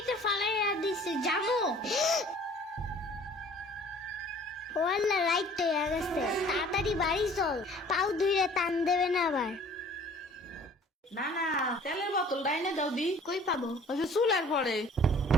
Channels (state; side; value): normal; both; correlation 0.51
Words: ফালাইয়া দিছে জানো? ওয়াল্লা রাইট তো হয়ে গেছে, তাড়াতাড়ি বাড়ি চল, পাও ধুইরে টান দেবে না আবার। না তেলের বোতল ডাইনে দাও দি। কই পাবো? ওই যে চুলার পরে।